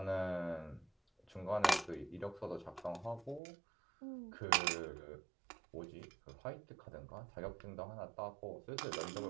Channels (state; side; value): drops out; left; at 3.4 s